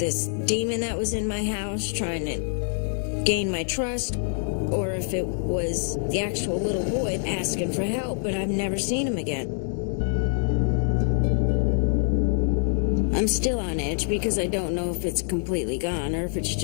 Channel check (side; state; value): right; silent; digital silence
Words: demon that was in my house trying to gain my trust, or if it was the actual little boy asking for help, but I've never seen him again. I'm still on edge because I don't know if it's completely gone or if it's